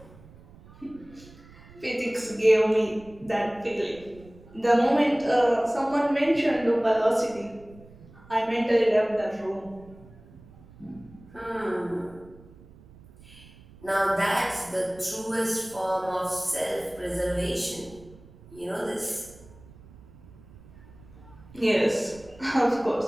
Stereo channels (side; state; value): right; noise; rumble, 22 dB below the sound